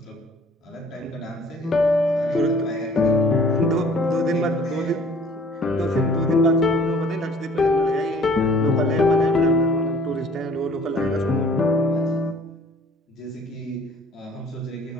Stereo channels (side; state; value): both; normal; correlation 0.53